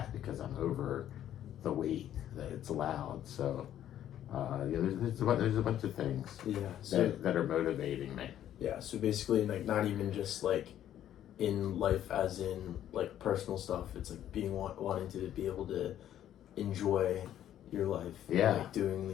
because I'm over the weight that it's allowed. So there's a bunch of things that are motivating me. Yeah, so basically not even just in life as in personal stuff. It's being wanting to be able to enjoy your life. Yeah. Doing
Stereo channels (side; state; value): right; quieter; 11.3 dB